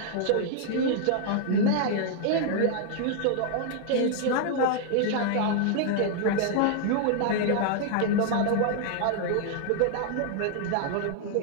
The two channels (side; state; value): both; different; correlation -0.01